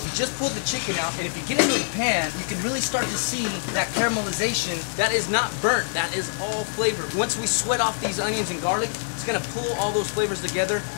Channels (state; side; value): silent; right; digital silence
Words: You just pull the chicken out, and if you get into the pan, you can really start to see that caramelization. That is not burnt. That is all flavor. Once we sweat off these onions and garlic, it's going to pull all those flavors together